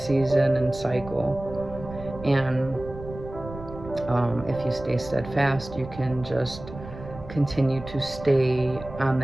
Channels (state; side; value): noise; right; rumble, 14 dB below the sound